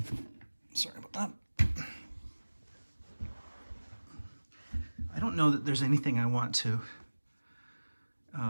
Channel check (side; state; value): both; inverted; correlation -1.00